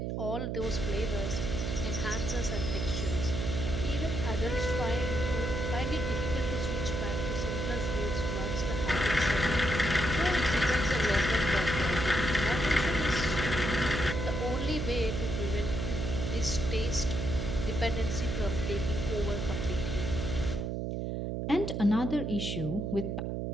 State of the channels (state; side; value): noise; right; hum, 2 dB below the sound